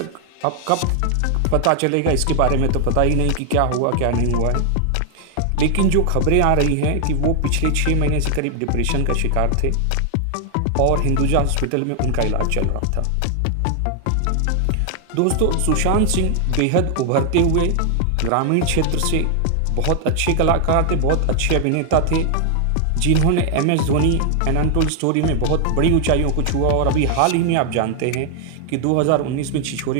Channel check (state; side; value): different; both; correlation 0.00